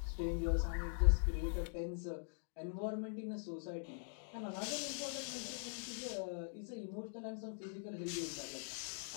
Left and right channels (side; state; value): right; silent; digital silence